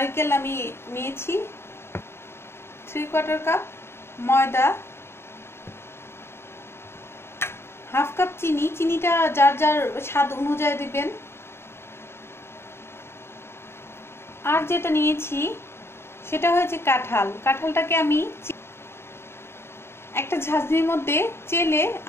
আমি নিয়েছি, 3/4 কাপ ময়দা, 1/2 কাপ চিনি। চিনিটা যার যার স্বাদ অনুযায়ী দিবেন। আর যেটা নিয়েছি সেটা হয়েছে কাঁঠাল। কাঁঠালটাকে আমি একটা ঝাঁঝরির মধ্যে চেলে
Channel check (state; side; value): late; right; 0.12 ms